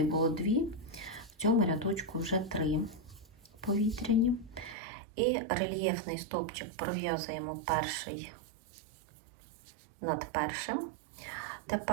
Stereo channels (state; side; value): drops out; left; at 4.8 s